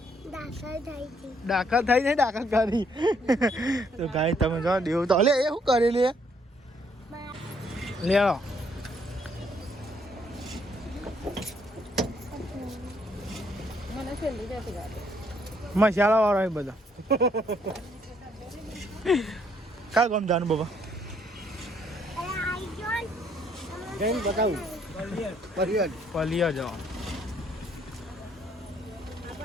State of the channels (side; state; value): both; normal; correlation 0.69